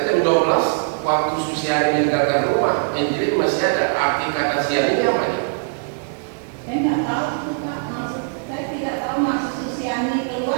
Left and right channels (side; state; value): left; silent; digital silence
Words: jam 12 waktu Susiani meninggalkan rumah, Angelin masih ada. Arti kata siang ini apa ya? Saya nggak tahu Pak, maksud saya tidak tahu maksud Susiani